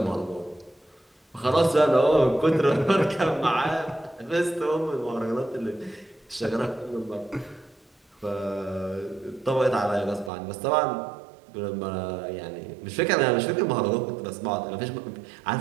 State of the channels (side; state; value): left; drops out; at 10.3 s